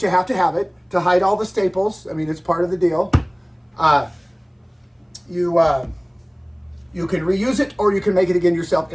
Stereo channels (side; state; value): both; identical; correlation 1.00